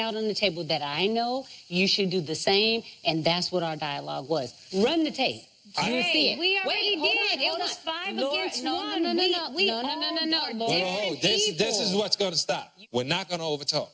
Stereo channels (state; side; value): identical; both; correlation 1.00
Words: on the table that I know. You should do the same. And that's what our dialogue was. Run the tape. You'll see it. We already Wait, did. hold It was on. 5 Lord, against no, 1. No. We all are different This people. is what's going to stop. We're not going to overtalk.